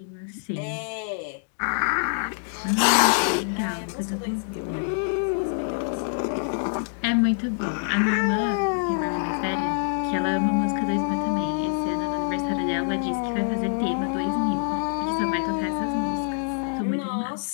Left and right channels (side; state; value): right; silent; digital silence